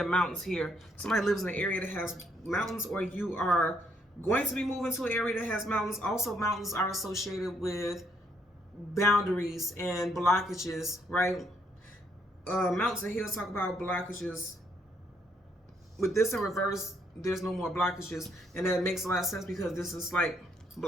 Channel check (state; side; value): normal; both; correlation 0.71